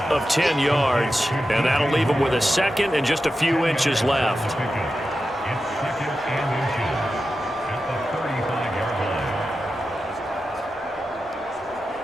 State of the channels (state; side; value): normal; both; correlation 0.91